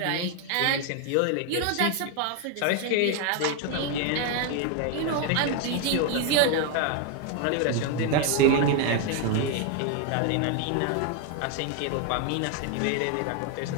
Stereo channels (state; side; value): different; both; correlation 0.01